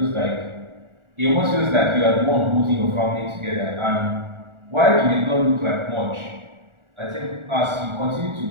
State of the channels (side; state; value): left; late; 1.4 ms